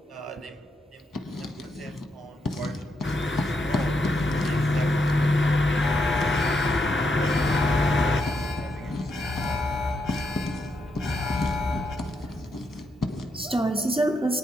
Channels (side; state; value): both; normal; correlation 0.81